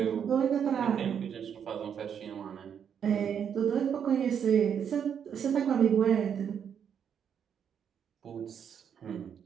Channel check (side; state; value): left; quieter; 8.0 dB